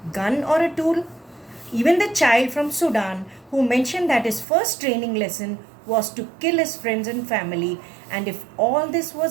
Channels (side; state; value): left; drops out; at 4.5 s